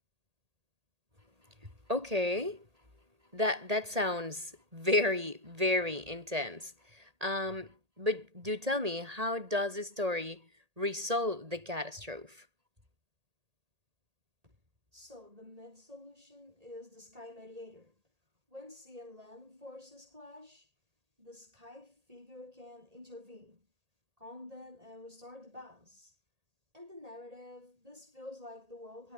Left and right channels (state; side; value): late; left; 1.8 ms